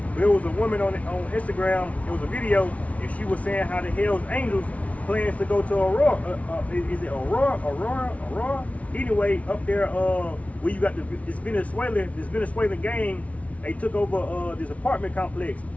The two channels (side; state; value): right; late; 0.066 ms